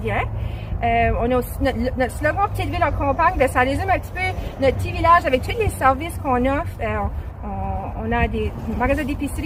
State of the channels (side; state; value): both; identical; correlation 1.00